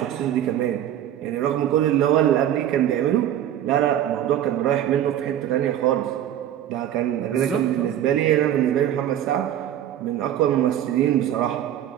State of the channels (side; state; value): left; quieter; 11.2 dB